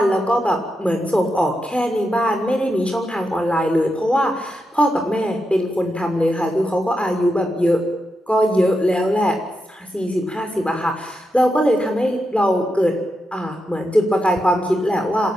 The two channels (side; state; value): both; normal; correlation 0.86